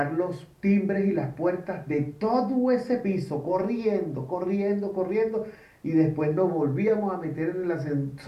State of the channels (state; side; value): identical; both; correlation 1.00